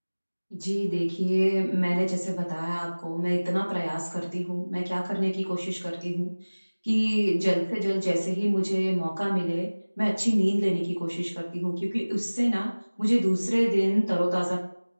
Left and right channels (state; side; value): inverted; both; correlation -1.00